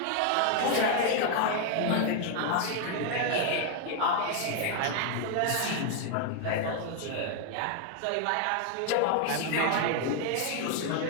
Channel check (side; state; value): both; different; correlation 0.00